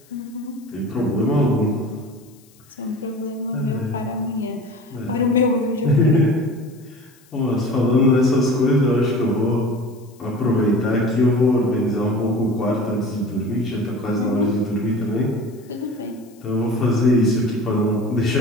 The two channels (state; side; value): noise; left; hiss, 29 dB below the sound